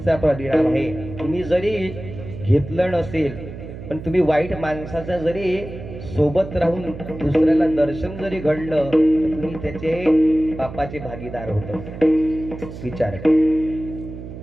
परिणाम आहे. तुम्ही जरी घेतलं नसेल पण तुम्ही वाईट माणसाचा जरी सोबत राहून दुसऱ्याला दर्शन जरी घडलं तर तुम्ही त्याचे पापाचे भागीदार होता. विचार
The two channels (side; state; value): right; noise; hum, 12 dB below the sound